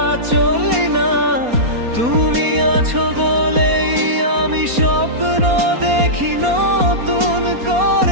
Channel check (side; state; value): left; late; 4.2 ms